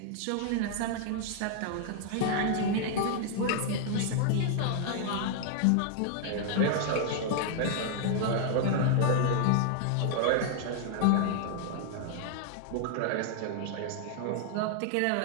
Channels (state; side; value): different; both; correlation -0.01